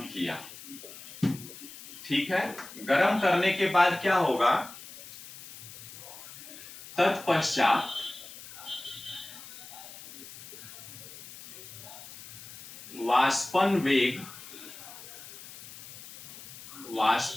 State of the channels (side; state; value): left; noise; hiss, 15 dB below the sound